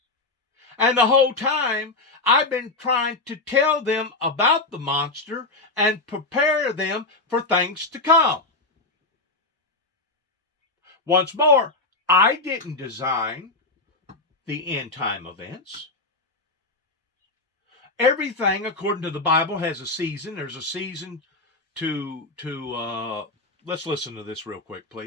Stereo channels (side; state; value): right; quieter; 3.2 dB